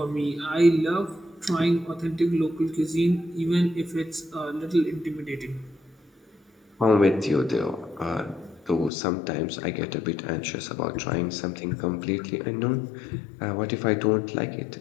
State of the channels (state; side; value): drops out; right; at 8.9 s